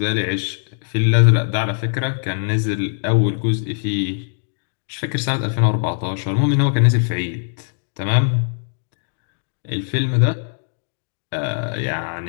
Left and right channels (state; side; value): silent; right; digital silence